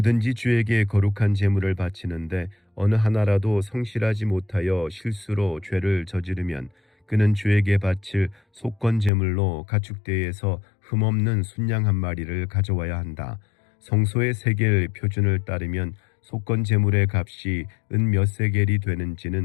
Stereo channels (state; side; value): drops out; right; at 9.1 s